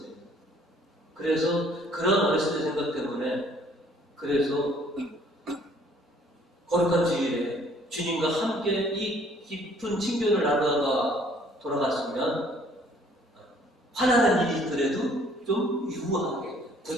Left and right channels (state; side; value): normal; both; correlation 0.59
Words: 그래서 그런 어렸을 때 생각 때문에 그래서 거룩한 주일에 주님과 함께 이 깊은 친교를 나누다가 돌아갔으면 화나는 일이 있더라도 좀 유하게